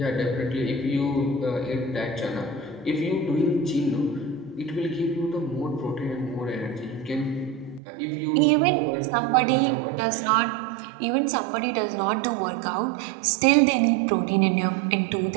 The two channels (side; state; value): left; drops out; at 7.8 s